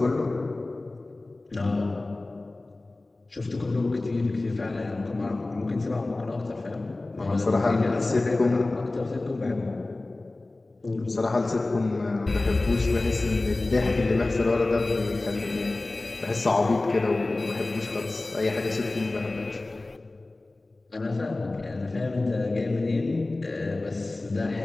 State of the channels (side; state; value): right; quieter; 3.0 dB